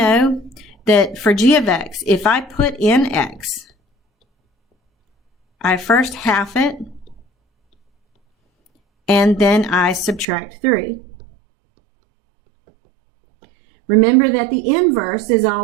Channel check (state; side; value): drops out; left; at 10.2 s